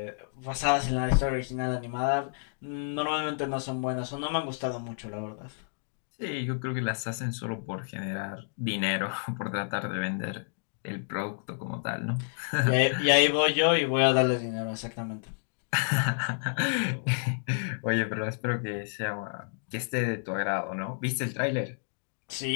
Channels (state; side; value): silent; right; digital silence